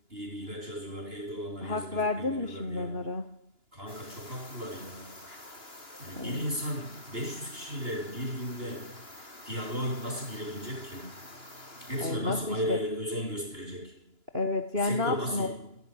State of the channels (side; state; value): left; late; 2.9 ms